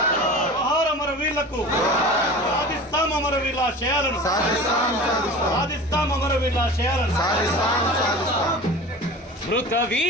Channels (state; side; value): normal; both; correlation 0.36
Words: జోహార్ అమర వీరులకు. సాధిస్తాం అమర వీరుల ఆశయాలను, సాధిస్తాం అమర వీరుల ఆశయాలను. మృత